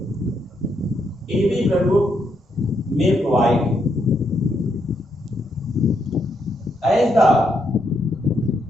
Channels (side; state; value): both; normal; correlation 0.78